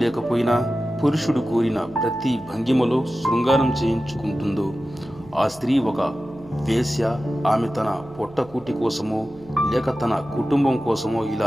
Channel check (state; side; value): noise; right; hum, 24 dB below the sound